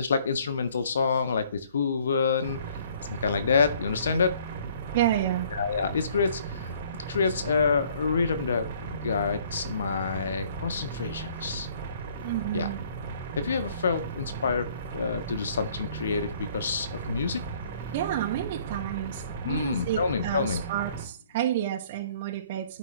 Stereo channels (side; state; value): both; inverted; correlation -0.59